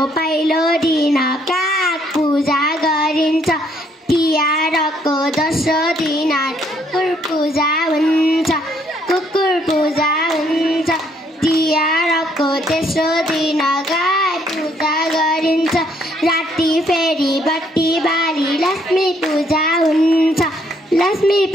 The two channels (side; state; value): both; normal; correlation 0.69